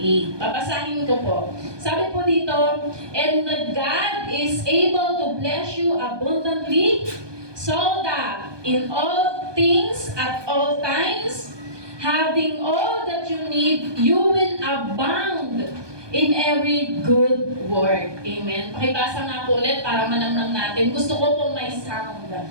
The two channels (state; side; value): late; left; 1.2 ms